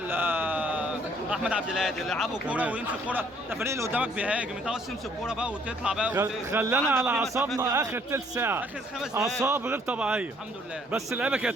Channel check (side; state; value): both; normal; correlation 0.63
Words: احمد عبد الهادي اللي يلعبوا كوره تمام. ويمسك كوره. انت الفريق اللي قدامك بيهاجم، انت عاوز تمسك كوره بقى وتطلع بقى خلانا عندك على في اعصابنا مسافات اخر تلت ساعه. اخر 5 دقايق. اعصاب غير طبيعيه. الحمد لله. بس اللعيبه